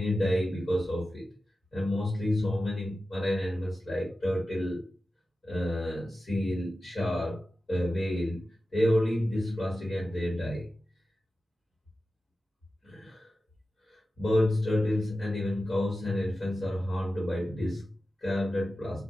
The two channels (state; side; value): normal; both; correlation 0.93